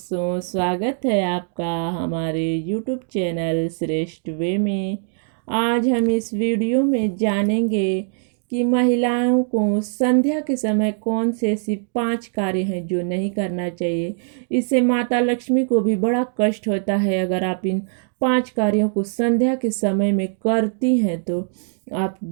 स्वागत है आपका हमारे YouTube चैनल श्रेष्ठ वे में। आज हम इस वीडियो में जानेंगे कि महिलाओं को संध्या के समय कौन से ऐसी 5 कार्य हैं जो नहीं करना चाहिए। इससे माता लक्ष्मी को भी बड़ा कष्ट होता है। अगर आप इन 5 कार्यों को संध्या के समय में करती हैं तो आप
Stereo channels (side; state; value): left; silent; digital silence